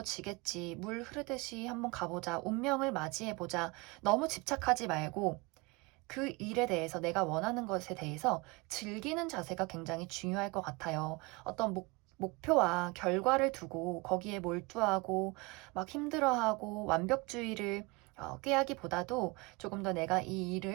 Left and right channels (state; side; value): quieter; left; 25.6 dB